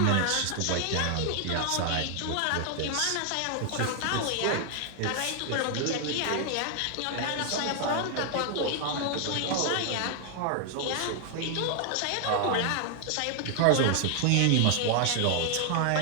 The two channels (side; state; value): both; different; correlation 0.00